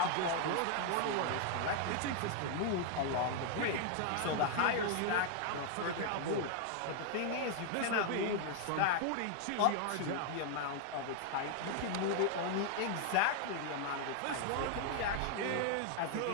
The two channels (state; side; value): different; both; correlation 0.00